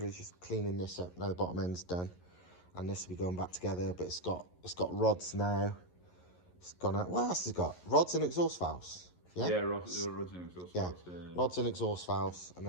just cleaning this up. Now the bottom end's done. And this will be going back together. But it's got rods now. It's gone out... What else has it got? Rods and exhaust valves. Yeah? Yeah, rods and exhaust valves. Rods and exhaust valves. And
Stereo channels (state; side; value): late; right; 11 ms